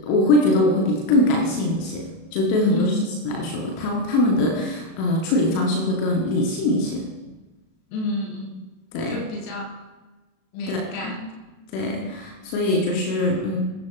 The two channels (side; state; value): right; late; 37 ms